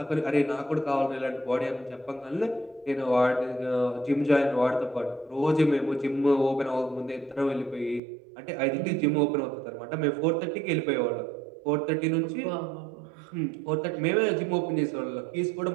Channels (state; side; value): drops out; left; at 8.0 s